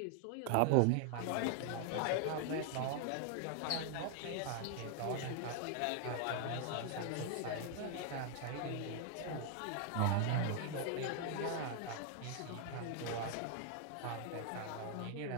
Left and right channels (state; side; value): different; both; correlation 0.00